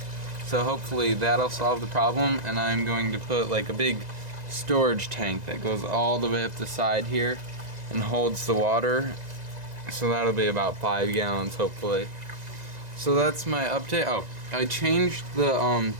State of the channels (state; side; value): late; left; 2.0 ms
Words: So hopefully that'll solve the problem, and I'm going to put like a big storage tank that goes all the way up the side here and holds the water. So that'll be about 5 gallons hopefully. So that's my update. Oh, I changed the